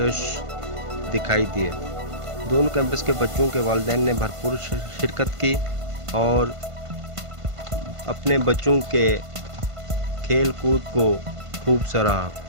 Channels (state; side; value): late; left; 1.5 ms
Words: दिखाई दिए। दोनों कैंपस के बच्चों के वालिदैन ने भरपूर शिरकत की और अपने बच्चों के खेल कूद को खूब सराहा।